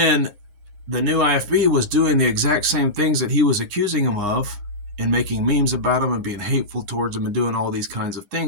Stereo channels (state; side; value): late; left; 9.8 ms